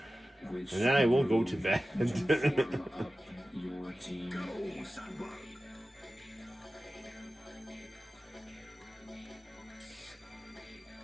Which And then I will go to bed. form up your team. Go, Sandberg.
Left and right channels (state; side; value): normal; both; correlation 0.95